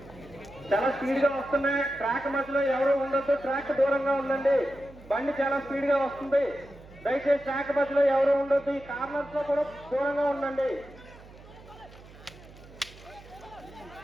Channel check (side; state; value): right; noise; hum, 20 dB below the sound